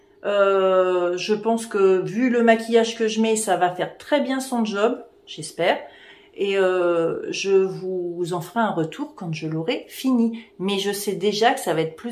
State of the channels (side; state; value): both; identical; correlation 1.00